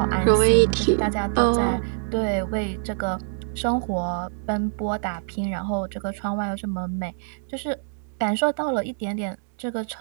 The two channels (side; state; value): left; silent; 62 dB below the other